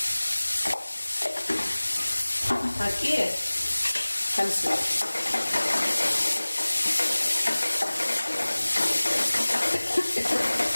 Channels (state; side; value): inverted; both; correlation -1.00